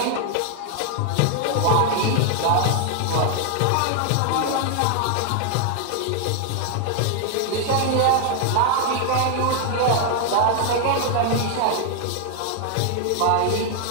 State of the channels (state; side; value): different; both; correlation 0.00